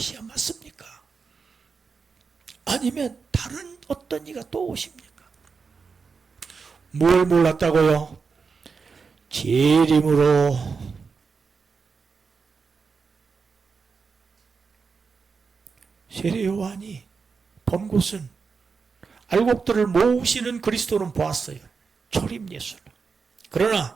맞습니까? 아니면 다른 어떤 이가 또 오십니까? 뭘 몰랐다고요? 재림으로 세례 요한이 본 곳은 알곡들을 모으시는 그리스도는 보았어요. 초림 예수를.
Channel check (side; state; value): left; quieter; 5.2 dB